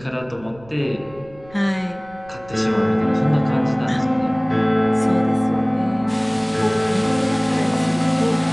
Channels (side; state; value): right; noise; rumble, 23 dB below the sound